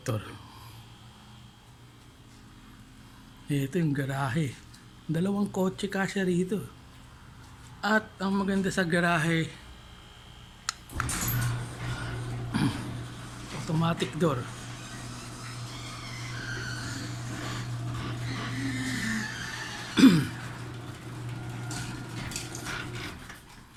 Ito yung garahe. Dalawang kotse kasya rito. At ang maganda sa garahe, automatic door.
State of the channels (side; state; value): both; identical; correlation 1.00